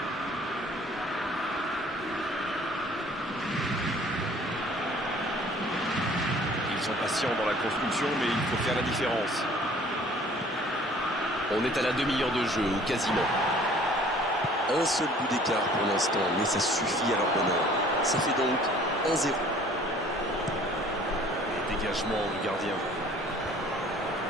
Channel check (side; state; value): both; normal; correlation 0.53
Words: Ils sont patients dans la construction, mais il faut faire la différence. On est à la demi-heure de jeu, ou quasiment. Un seul but d'écart pour l'instant, mais ça suffit à leur bonheur. Ça fait donc 1-0. Dégagement du gardien.